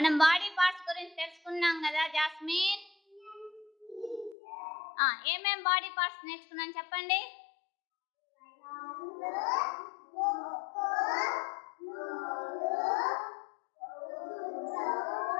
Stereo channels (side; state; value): right; drops out; at 4.4 s